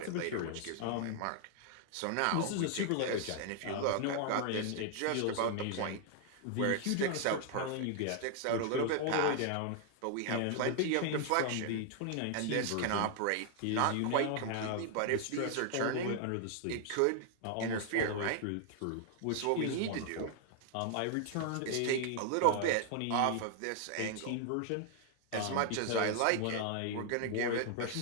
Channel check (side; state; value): both; different; correlation 0.00